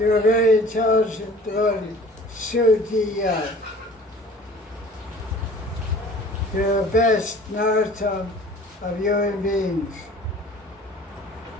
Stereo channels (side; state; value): both; normal; correlation 0.47